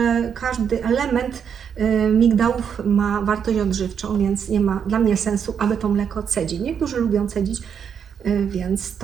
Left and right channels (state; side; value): quieter; left; 7.5 dB